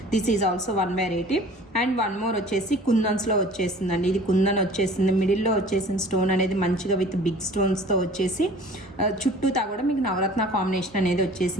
This is also one variety. And one more వచ్చేసి కుందన్స్లో వచ్చేసిందండి. ఇది కుందన్ వచ్చేసింది, మిడిల్లో వచ్చేసిన స్టోన్ అనేది మంచిగా విత్ బిగ్ స్టోన్స్తో వచ్చేసి చుట్టూతా కూడా మీకు నవరత్న కాంబినేషన్ అనేది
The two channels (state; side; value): normal; both; correlation 0.46